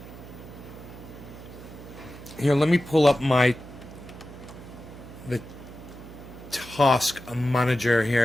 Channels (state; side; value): noise; right; hum, 15 dB below the sound